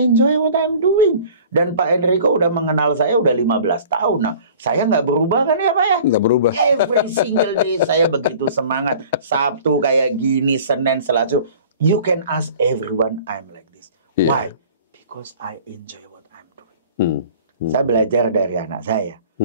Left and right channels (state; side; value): inverted; both; correlation -0.47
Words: what I'm doing. Dan Pak Enrico udah mengenal saya udah 15 tahun. Nah, saya nggak berubah kan ya Pak ya? Nggak berubah. Every single day saya begitu semangat. Sabtu kayak gini, Senin, Selasa. You can ask everyone I'm like this. Why? Because I enjoy what I'm doing. Saya belajar dari anak saya.